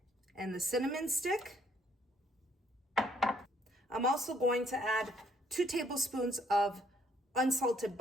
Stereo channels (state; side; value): normal; both; correlation 0.67